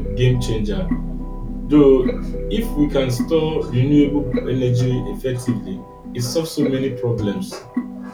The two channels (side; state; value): both; identical; correlation 1.00